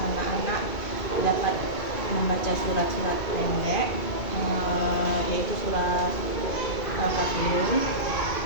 dapat membaca surat-surat pendek, yaitu surat Al-Kafirun.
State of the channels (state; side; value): late; right; 2.3 ms